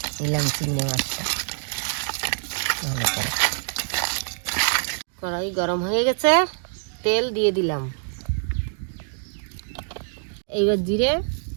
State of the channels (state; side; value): silent; left; 62 dB below the other